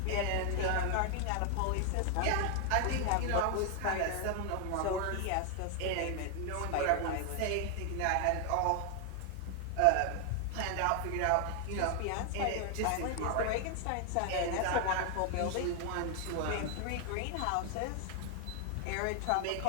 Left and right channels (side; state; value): both; different; correlation 0.00